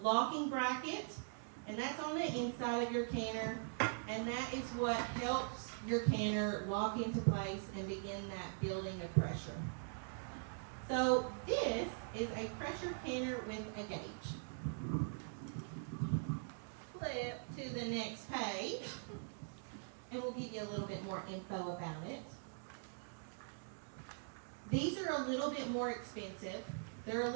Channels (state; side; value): silent; left; digital silence